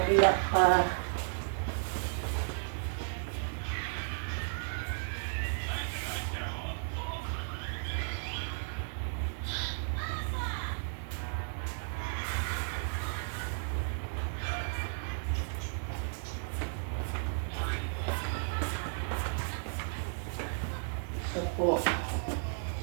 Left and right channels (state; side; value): silent; left; digital silence